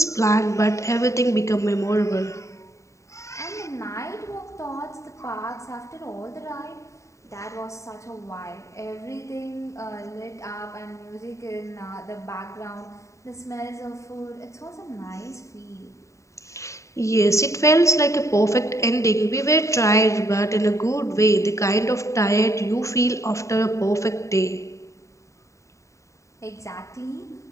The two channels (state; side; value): late; right; 0.15 ms